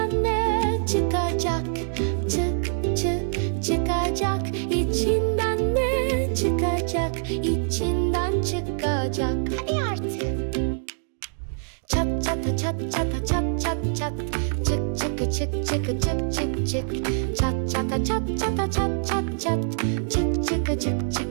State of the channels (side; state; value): left; silent; digital silence